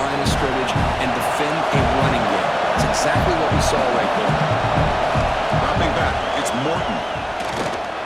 of scrimmage and defend a running game. It's exactly what we saw right there. Dropping back, it's Morton.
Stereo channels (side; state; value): both; identical; correlation 1.00